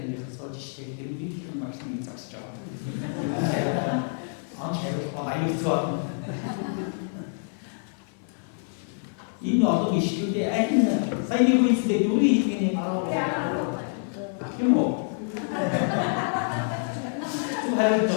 이 어떤 이슈 때 아이는 사이비고 있을 때 요리 이게 바로 뭐 하여튼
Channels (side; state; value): right; silent; 60 dB below the other